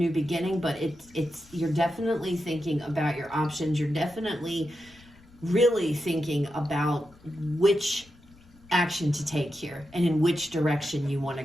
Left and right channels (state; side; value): noise; left; rumble, 26 dB below the sound